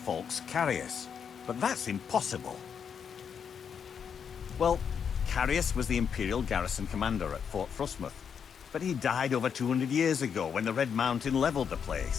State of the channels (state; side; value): quieter; right; 7.2 dB